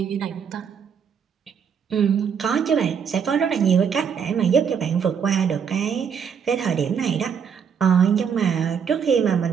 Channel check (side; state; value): left; quieter; 7.1 dB